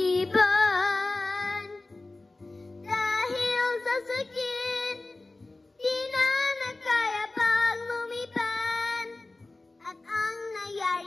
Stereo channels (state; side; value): quieter; right; 3.1 dB